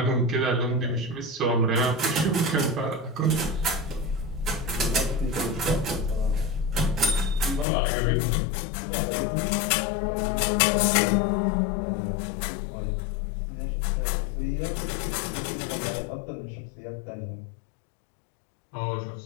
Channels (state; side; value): drops out; right; at 7.7 s